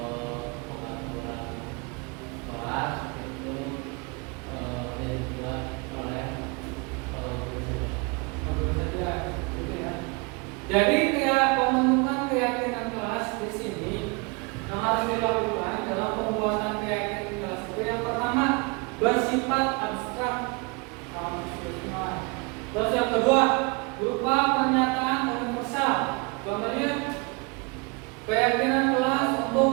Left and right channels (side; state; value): left; quieter; 29.9 dB